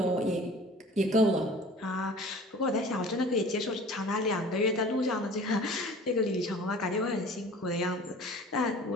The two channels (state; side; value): normal; both; correlation 0.44